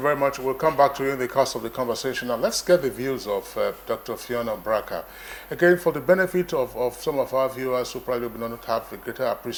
much. We'll come back to you in the course of the conversation. Now, let's get the views of Dr. Fiona Braka. Again, for the benefit of some of our viewers who probably do not have a greater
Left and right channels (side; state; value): both; identical; correlation 1.00